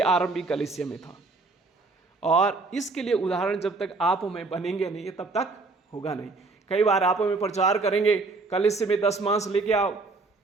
आरंभिक कलीसिया में था, और इसके लिए उदाहरण जब तक आप में बनेंगे नहीं तब तक होगा नहीं। कई बार आप में प्रचार करेंगे, कलीसिया में 10 मांस लेके आओ,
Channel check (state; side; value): quieter; left; 3.6 dB